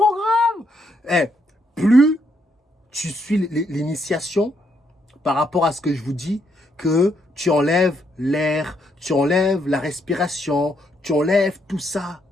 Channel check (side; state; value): both; normal; correlation 0.75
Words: Plus tu suis l'initiation par rapport à ce que je vous dis, que tu enlèves l'air, tu enlèves la respiration, tu enlèves tout ça,